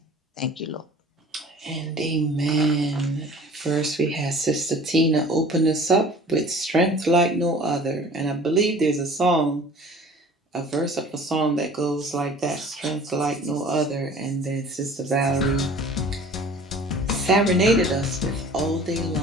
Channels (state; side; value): normal; both; correlation 0.47